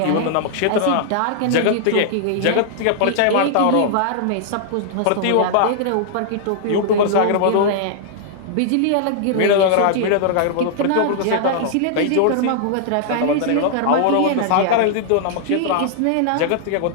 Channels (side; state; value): both; different; correlation -0.01